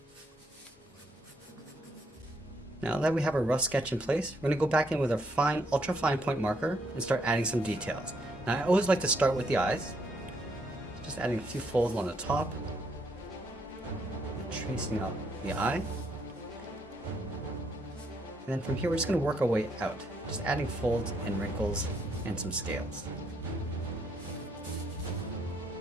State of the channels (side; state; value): both; normal; correlation 0.73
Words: Now that we have our rough sketch in place, we're going to go back in with our fine, ultra fine point marker and start adding some details. Now I always like to start with the eyes. Just adding a few folds on the top. And tracing out the eye. And then from here we're just going to work our way out. Just adding folds and wrinkles and some scales.